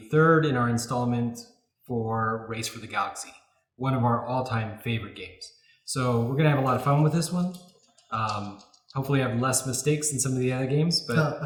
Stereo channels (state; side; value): identical; both; correlation 1.00